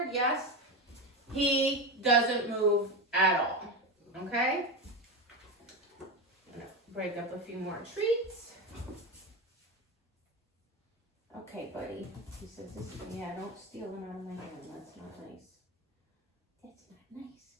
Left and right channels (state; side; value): normal; both; correlation 0.18